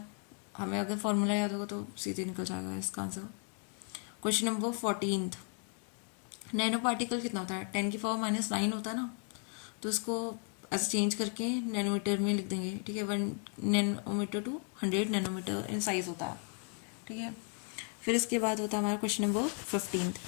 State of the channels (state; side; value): quieter; right; 39.1 dB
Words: हमें अगर फॉर्मूला याद होगा तो सीधे निकल जाएगा इसका answer. Question number 14, nano particle कितना होता है, 10⁻⁹ होता है ना, तो इसको ऐसे चेंज करके नैनोमीटर में लिख देंगे, ठीक है। 1 nanometre to 100 nanometre in size होता है, ठीक है। फिर इसके बाद होता है हमारा क्वेश्चन नंबर 15,